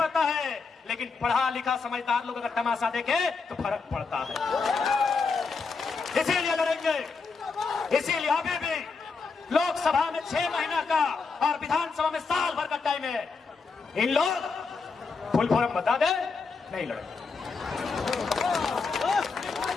है, लेकिन पढ़ा लिखा समझदार लोग अगर तमाशा देखे तो फर्क पड़ता है। इसीलिए लड़ेंगे, इसीलिए अभी भी लोकसभा में 6 महीना का और विधानसभा में साल भर का टाइम है। इन लोग फुल फॉर्म बता दे, नहीं लड़ेंगे।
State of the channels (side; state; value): right; quieter; 4.7 dB